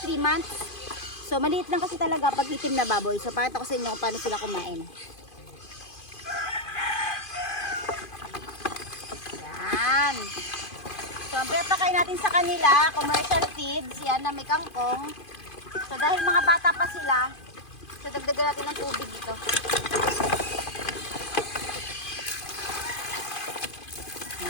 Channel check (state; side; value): late; right; 2.5 ms